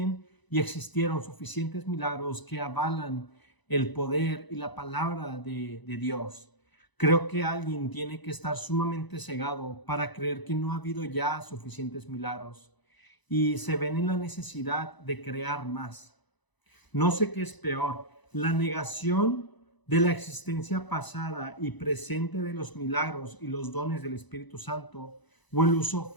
y existieron suficientes milagros que avalan el poder y la palabra de Dios. Creo que alguien tiene que estar sumamente cegado para creer que no ha habido ya suficientes milagros y se ven en la necesidad de crear más. No sé qué es peor, la negación de la existencia pasada y presente de los milagros y los dones del Espíritu Santo o el uso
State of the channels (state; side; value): late; right; 1.0 ms